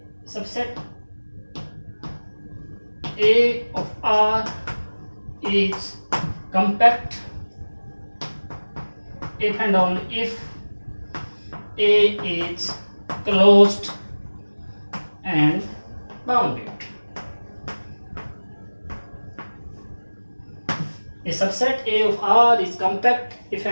A of R is compact if and only if A is closed and bounded. A subset A of R is compact if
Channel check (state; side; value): inverted; both; correlation -1.00